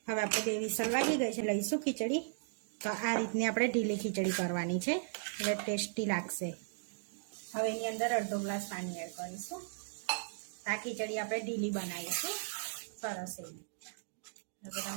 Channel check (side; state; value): left; silent; digital silence